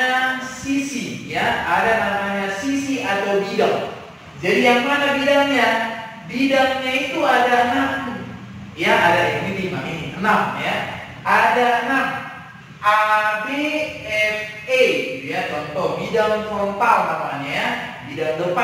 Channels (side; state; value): both; identical; correlation 1.00